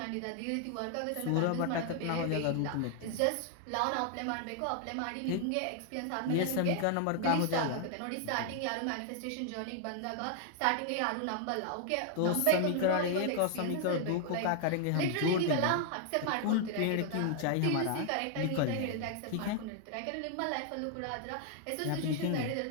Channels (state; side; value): different; both; correlation 0.00